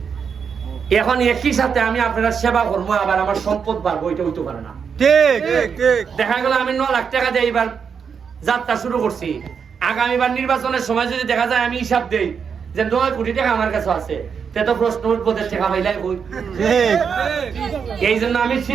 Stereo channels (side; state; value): left; quieter; 6.6 dB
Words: এখন একই সাথে আমি আপনারা সেবা করবো, আবার আমার সম্পদ বাড়বো, ওইটা হইতে পারে না। ঠিক ঠিক ঠিক দেখা গেল আমি 9 লাখ টাকা দিয়ে এবার যাত্রা শুরু করছি, আগামীবার নির্বাচনের সময় যদি দেখা যায় আমি হিসাব দেই যে 9 কোটি টাকা আমার কাছে আছে, তে তো প্রশ্ন উঠবো টাকা পাইলাই কই। ঠিক এই জন্য আমি